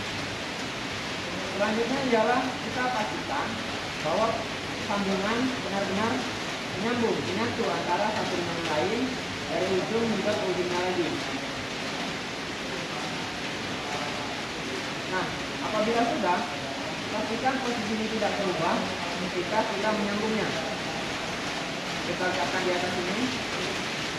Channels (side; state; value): both; identical; correlation 1.00